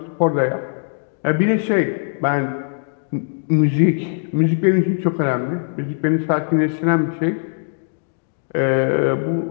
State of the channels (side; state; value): right; silent; digital silence